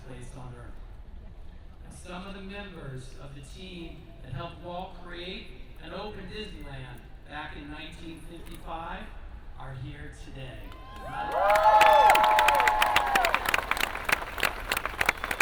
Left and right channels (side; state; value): both; identical; correlation 1.00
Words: place on earth. And some of the members of the team that helped Walt create and open Disneyland back in 1955 are here today.